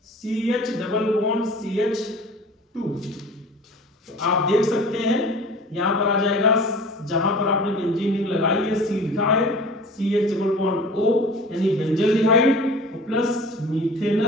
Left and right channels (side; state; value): both; normal; correlation 0.42